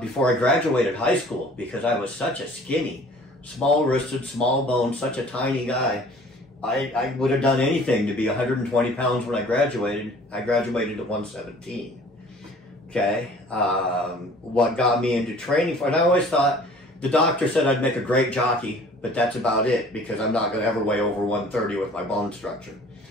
before I graduated high school, because I was such a skinny, small-wristed, small-boned, such a tiny guy. I would have done anything to be 120 pounds when I graduated. I graduated at 117. Okay, what got me into training for, and I always thought, the doctor said I'd make a great jockey, but that's about it, because I'm not going to ever weigh over 130 with my bone structure.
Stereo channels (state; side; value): normal; both; correlation 0.50